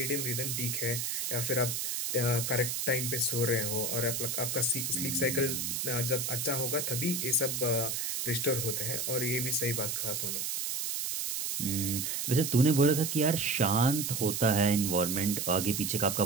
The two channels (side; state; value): right; noise; hiss, 1 dB below the sound